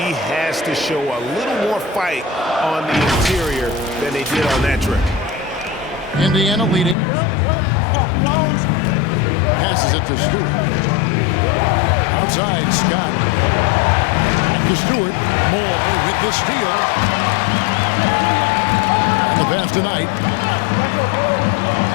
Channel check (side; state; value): right; drops out; at 7.0 s